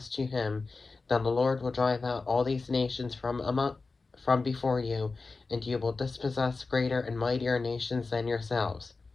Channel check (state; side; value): quieter; right; 3.9 dB